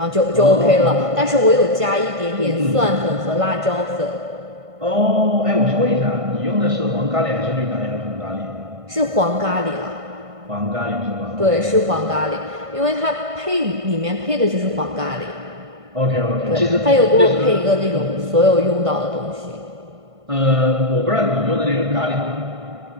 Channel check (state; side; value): late; left; 1.5 ms